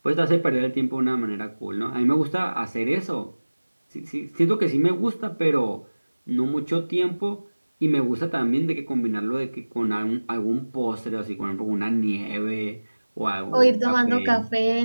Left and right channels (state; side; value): inverted; both; correlation -1.00